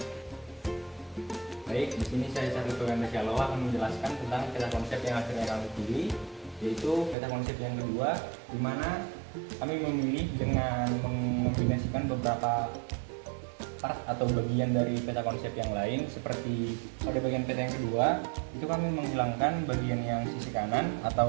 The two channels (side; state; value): left; drops out; at 7.2 s